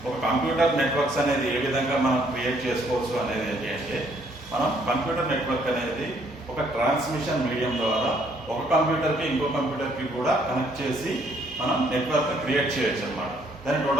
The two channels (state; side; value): normal; both; correlation 0.66